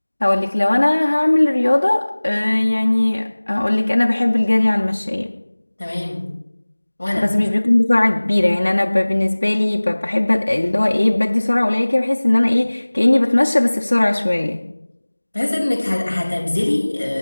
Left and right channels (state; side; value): inverted; both; correlation -1.00